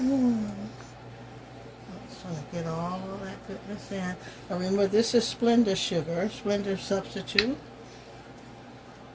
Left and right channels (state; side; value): identical; both; correlation 1.00